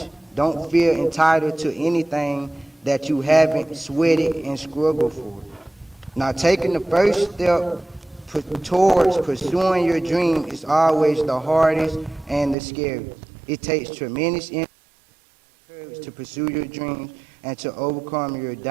Don't feel entitled to anything that you haven't sweated and struggled for. Now, taking the first step towards pursuing your dream is always the hardest and the scariest. It takes tremendous courage to pursue your dreams and to overcome your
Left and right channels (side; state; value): left; drops out; at 12.6 s